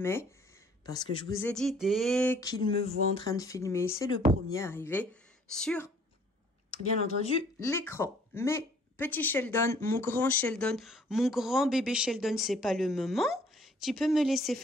Parce que je vous ai dit, dès qu'il me voit en train de filmer, c'est le premier arrivé sur, bien entendu, l'écran. Mais petit Sheldon, mon grand bébé Sheldon, c'est pas le moment. Tu peux me laisser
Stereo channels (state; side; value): normal; both; correlation 0.58